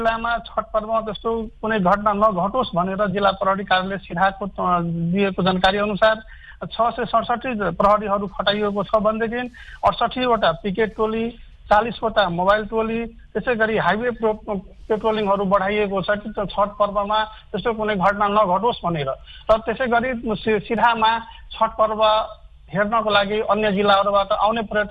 छठ पर्वमा त्यस्तो कुनै घटना नघटोस् भनेर जिल्ला प्रहरी कार्यालय सिराहाको दिएको जानकारी अनुसार 667 प्रहरीहरू खटाइएको छ भनेदेखि 68वटा पिकेट टोली, 40वटा मोबाइल टोली, त्यसै गरी हाइवे पेट्रोलिङहरू बढाइएको छ कि छठ पर्वमा त्यस्तो कुनै घटना नघटोस् भनेर। र त्यसै गरी सिराहामा छठ पर्व हेर्नको लागि अन्य जिल्लाहरूबाट आउने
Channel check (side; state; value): both; identical; correlation 1.00